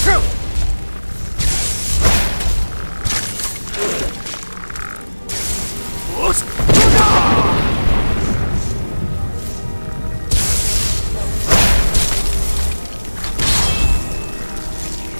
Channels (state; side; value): inverted; both; correlation -1.00